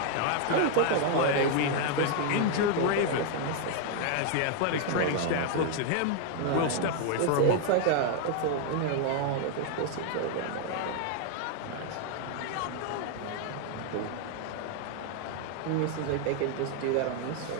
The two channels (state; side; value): different; both; correlation 0.00